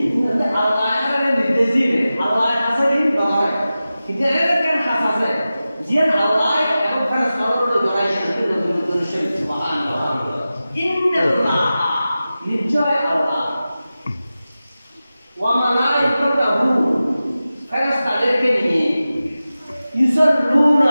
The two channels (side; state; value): both; inverted; correlation -0.95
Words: আল্লাহ নির্দেশ দিবে আল্লাহ হাসারি নগরে কিন্তু এর কেন হাসাছে জিন আল্লাহ এবং ফেরেশতাদের ধরাই কিন্তু নতুন শরীফ সুবহানাল্লাহ ইন্নাল্লাহ নিশ্চয় আল্লাহ ওয়া মালাইকাতুহু ফেরেশতাদেরকে নিয়ে